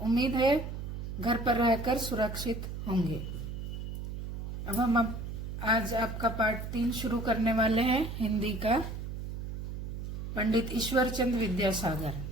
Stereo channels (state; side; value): noise; right; hum, 6 dB below the sound